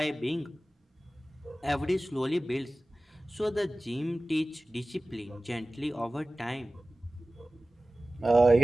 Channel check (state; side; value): normal; both; correlation 0.97